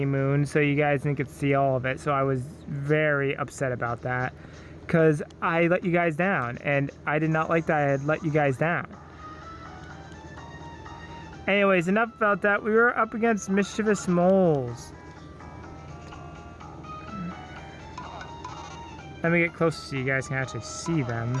Moon, so you guys didn't get to see all of it. So I was very upset about that, because I let you guys down, and I did not like that I had let you guys down. Anyways, enough about that. We were up against mischievous moles. Let me get closer so you guys can actually see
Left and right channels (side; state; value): both; identical; correlation 1.00